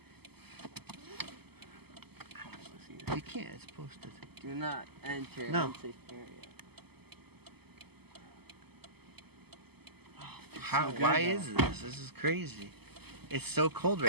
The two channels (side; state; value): left; late; 0.97 ms